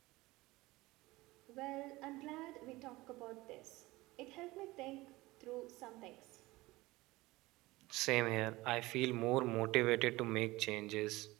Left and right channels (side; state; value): left; quieter; 20.0 dB